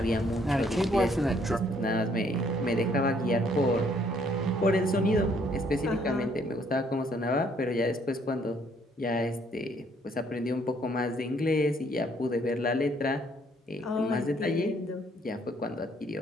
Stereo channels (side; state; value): both; normal; correlation 0.65